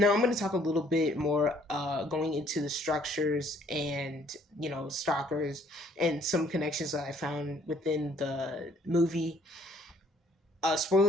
I'm going to talk a little bit more going into the structures and stalkers and some connections that I found within the movie.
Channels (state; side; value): normal; both; correlation 0.62